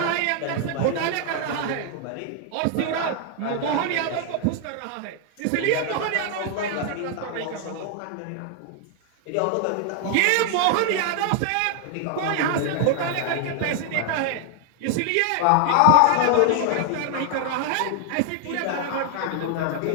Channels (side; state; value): both; different; correlation 0.00